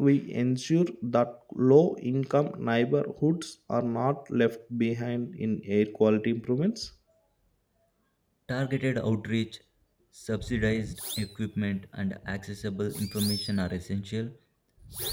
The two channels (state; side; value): identical; both; correlation 1.00